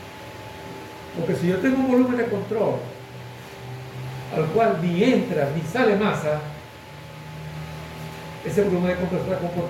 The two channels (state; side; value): identical; both; correlation 1.00